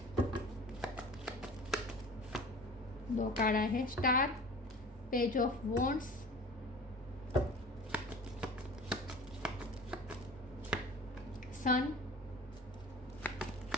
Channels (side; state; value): both; normal; correlation 0.40